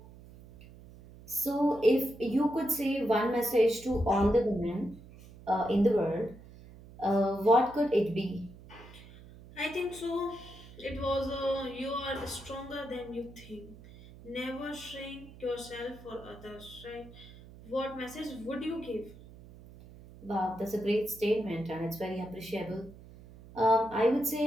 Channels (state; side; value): noise; right; hum, 19 dB below the sound